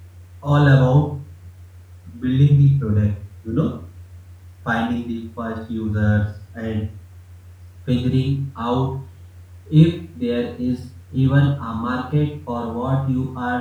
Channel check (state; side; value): identical; both; correlation 1.00